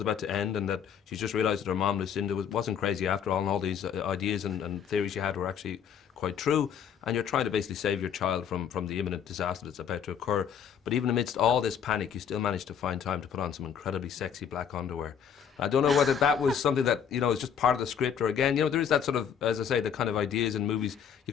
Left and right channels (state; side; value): quieter; right; 7.9 dB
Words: to end and that she's just realised that her mom Lucinda wasn't crazy after all, and all these ideas and theories she had were actually quite true, and you're trying to basically save your child from the imminent disaster that's about to occur. But even amidst all this panic, you still managed to find time to put on some incredibly sexy black underwear. I don't know whether that was something that, you know, is just part of the script, or again, you know, there is that sort of, as I say, the kind of ideas in movies, you